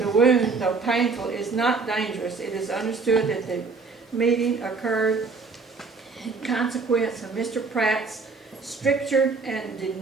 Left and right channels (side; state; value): left; quieter; 4.4 dB